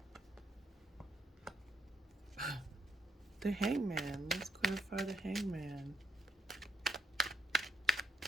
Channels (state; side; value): normal; both; correlation 0.72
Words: the Hangman. Let's clarify the Hangman.